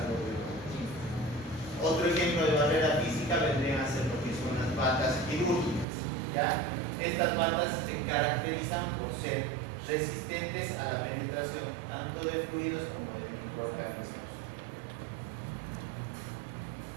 doble enguantado. Otro ejemplo de barrera física vendrían a ser lo que son las batas quirúrgicas. ¿Ya? Estas batas se caracterizan por ser resistentes a la penetración tanto de fluidos como de microorganismos.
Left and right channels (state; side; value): drops out; left; at 5.9 s